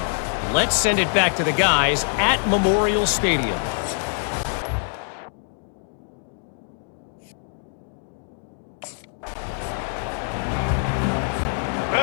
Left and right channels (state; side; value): silent; right; digital silence